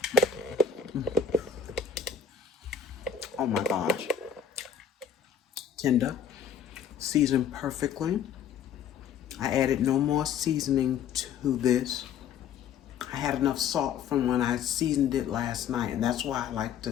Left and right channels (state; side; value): quieter; right; 7.5 dB